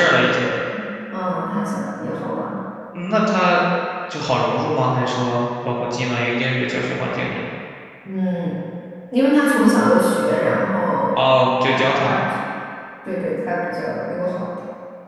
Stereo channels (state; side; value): identical; both; correlation 1.00